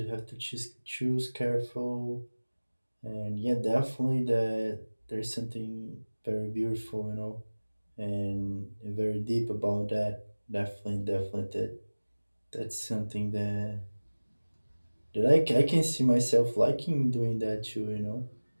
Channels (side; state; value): both; inverted; correlation -1.00